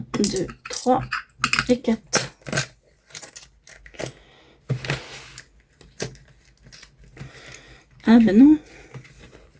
2, 3 et 4. Ah ben non.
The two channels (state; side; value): identical; both; correlation 1.00